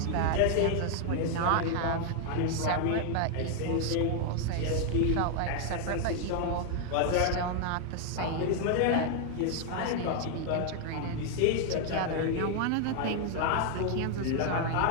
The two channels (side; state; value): both; different; correlation 0.00